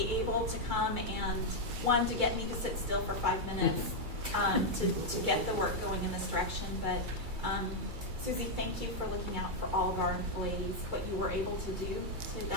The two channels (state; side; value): late; left; 2.3 ms